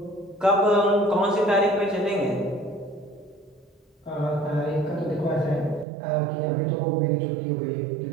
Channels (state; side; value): drops out; left; at 5.9 s